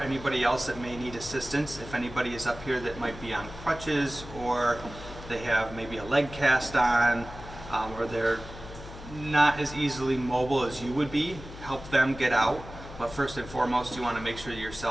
else that may need assistance. If anybody is up here that might be on crutches, or they have maybe a leg cast on, or they're not as easily mobile as you would be, help them get out. But first and foremost, you want to make sure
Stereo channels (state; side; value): noise; left; hum, 13 dB below the sound